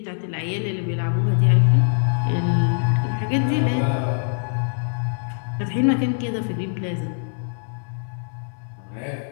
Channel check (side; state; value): right; silent; digital silence